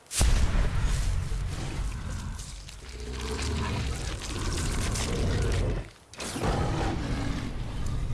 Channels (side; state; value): both; identical; correlation 1.00